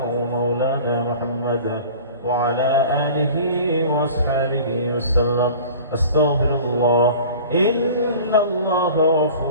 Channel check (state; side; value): inverted; both; correlation -0.42